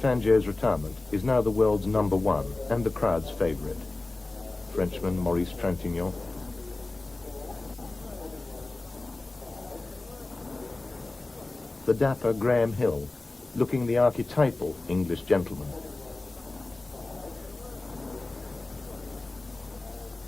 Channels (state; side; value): quieter; right; 3.1 dB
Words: retirement is now the world's #1 and the crowd's favourite. Frenchman Maurice Trintignant. The dapper Graham Hill, looking the archetypal English gentleman.